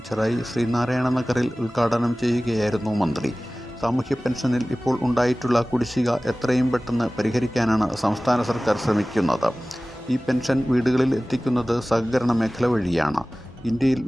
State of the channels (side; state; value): both; normal; correlation 0.98